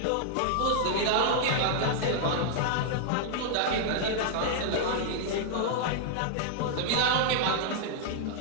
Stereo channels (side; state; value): both; different; correlation 0.00